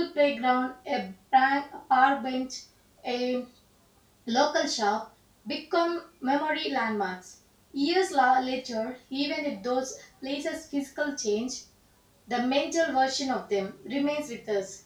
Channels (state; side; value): identical; both; correlation 1.00